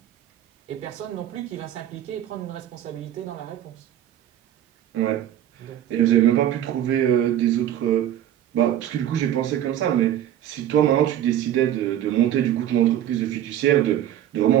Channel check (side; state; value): left; quieter; 11.4 dB